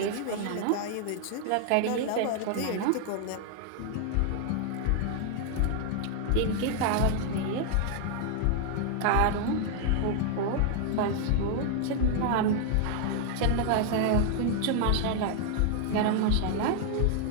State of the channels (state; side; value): different; both; correlation 0.00